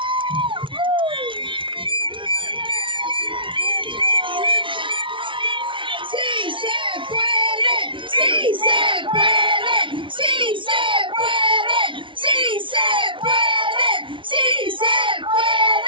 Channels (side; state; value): left; late; 0.25 ms